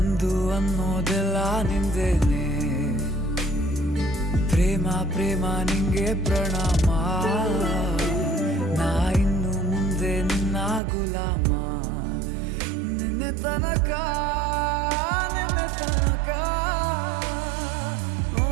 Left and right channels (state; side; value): drops out; left; at 10.8 s